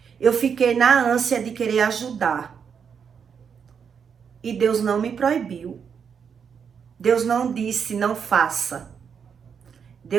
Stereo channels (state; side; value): quieter; left; 6.9 dB